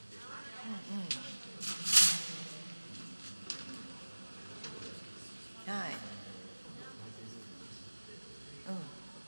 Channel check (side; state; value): both; inverted; correlation -1.00